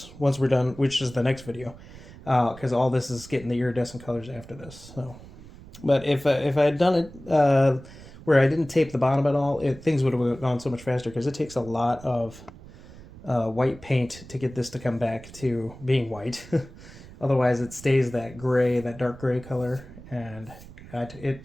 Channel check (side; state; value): right; noise; rumble, 18 dB below the sound